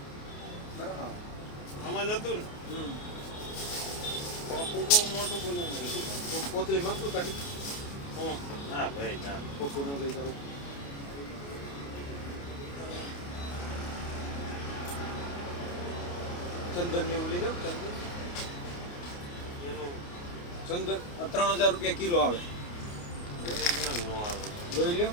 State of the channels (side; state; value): right; late; 29 ms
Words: બરાબર. આમાં જતું ને હમ. કોપું બહુ મોટું બનાવી તો કોથળી માંગતું કાઢી હું ના ભાઈ ના કોકું ન લઈ જાવ. ચંદન ને એવું લઈ જાવ. ચંદન એનું ચંદન 3000 રૂપિયા કિલો આવે. ઓરિજિનલ નો આવે જોઈ લ્યો